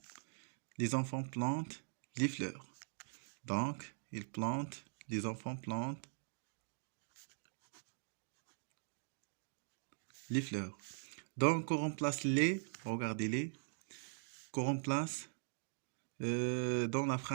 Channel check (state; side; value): silent; left; digital silence